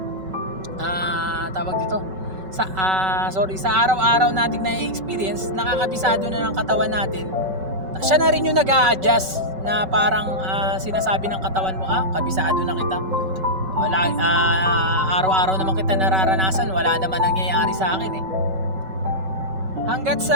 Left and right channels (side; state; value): left; late; 5.3 ms